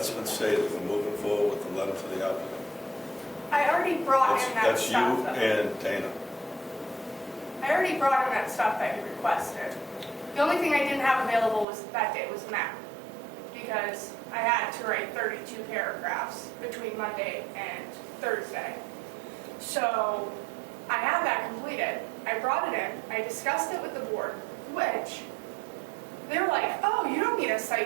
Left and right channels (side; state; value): left; drops out; at 11.7 s